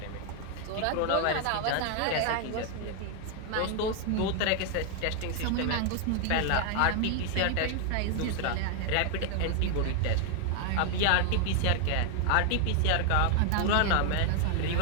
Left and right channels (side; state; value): both; different; correlation 0.00